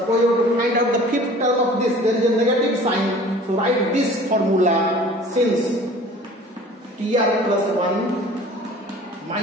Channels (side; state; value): both; normal; correlation 0.46